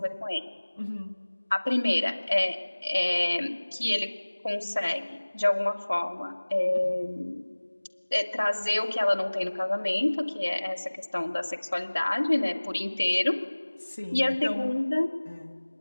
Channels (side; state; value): both; inverted; correlation -1.00